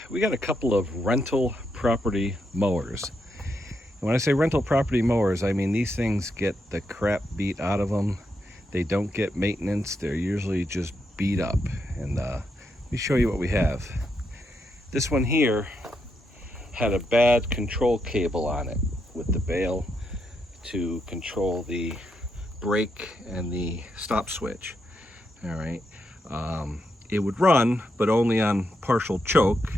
We got a couple of rental property mowers. And when I say rental property mowers, I mean these things get the crap beat out of them. They don't get maintenance. They're usually just beat up. And let me show you what we have. This one here had a bad control cable on it with the bail to control the brake and the stop switch. All right. It would run, but only on partial choke.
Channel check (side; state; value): both; normal; correlation 0.81